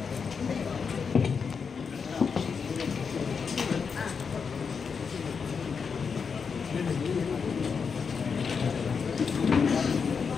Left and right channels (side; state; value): right; quieter; 5.8 dB